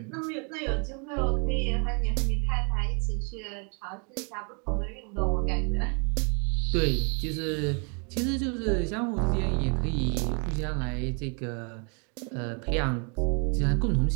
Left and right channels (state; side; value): quieter; left; 36.9 dB